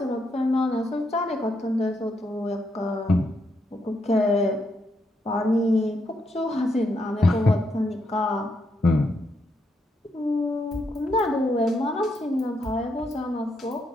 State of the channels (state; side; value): normal; both; correlation 0.79